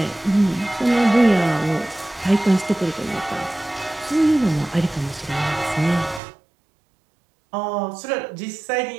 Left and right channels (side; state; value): left; drops out; at 6.2 s